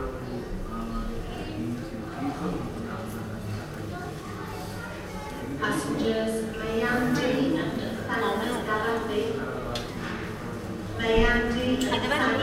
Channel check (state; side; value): identical; both; correlation 1.00